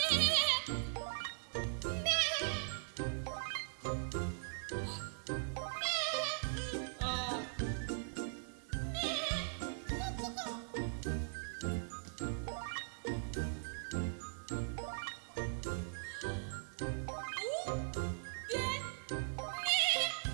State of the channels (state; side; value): silent; left; digital silence